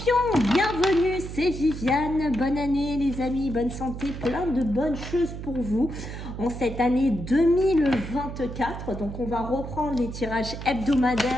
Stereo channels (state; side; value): noise; right; hum, 9 dB below the sound